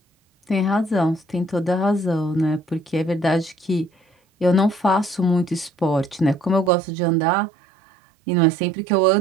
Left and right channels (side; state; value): left; drops out; at 6.7 s